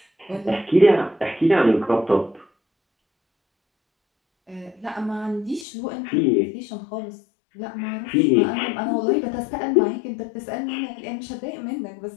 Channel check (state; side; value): drops out; right; at 5.7 s